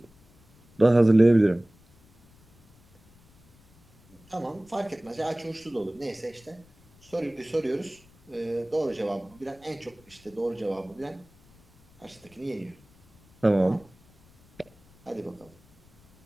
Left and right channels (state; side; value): noise; left; rumble, 29 dB below the sound